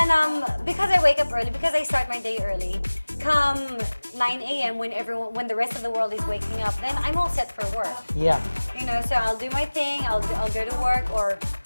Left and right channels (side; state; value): both; inverted; correlation -1.00